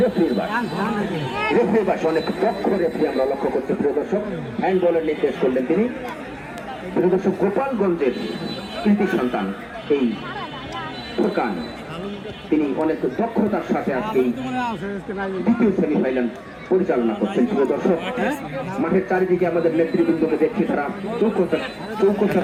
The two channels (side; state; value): both; identical; correlation 1.00